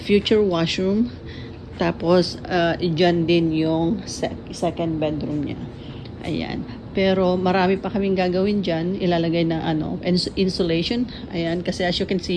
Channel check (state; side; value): identical; both; correlation 1.00